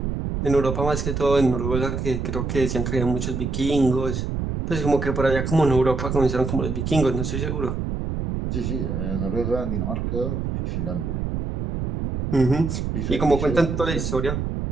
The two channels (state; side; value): noise; right; rumble, 2 dB below the sound